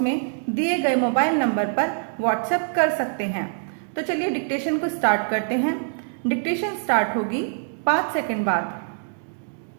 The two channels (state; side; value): silent; left; digital silence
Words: में दिए गए मोबाइल नंबर पर व्हाट्सएप कर सकते हैं। तो चलिए डिक्टेशन को स्टार्ट करते हैं। डिक्टेशन स्टार्ट होगी 5 सेकंड बाद।